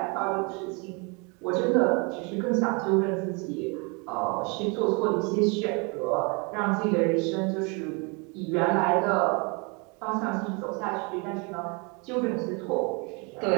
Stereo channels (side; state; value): left; quieter; 31.7 dB